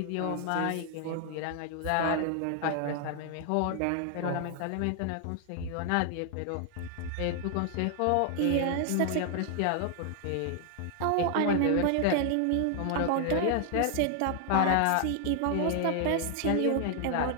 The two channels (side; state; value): both; different; correlation 0.00